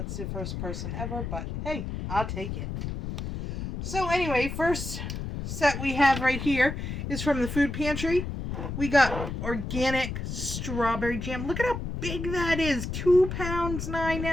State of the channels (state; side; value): noise; left; rumble, 5 dB below the sound